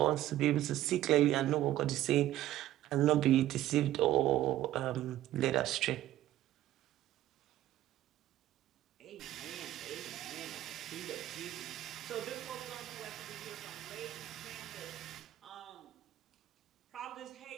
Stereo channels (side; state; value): left; quieter; 13.8 dB